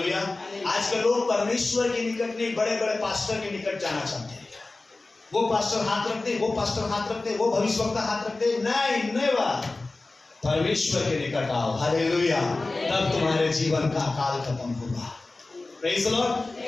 आजकल लोग परमेश्वर के निकट नहीं, बड़े बड़े पास्टर के निकट जाना चाहते हैं। वो पास्टर हाथ रखते, वो पास्टर हाथ रखते, वो भविष्यवक्ता हाथ रखते। नहीं बात, परमेश्वर के निकट आओ। हालेलुया। तब तुम्हारे जीवन का अकाल खत्म होगा। Praise the Lord.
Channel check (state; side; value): quieter; right; 3.3 dB